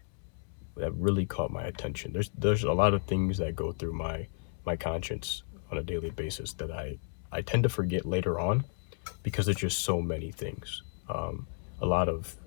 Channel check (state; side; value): silent; right; 56 dB below the other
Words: really caught my attention. There's a lot of things that go through my conscience on a daily basis that I tend to forget later on because there's just so many things. A lot of